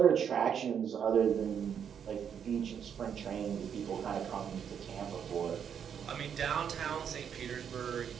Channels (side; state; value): left; quieter; 8.0 dB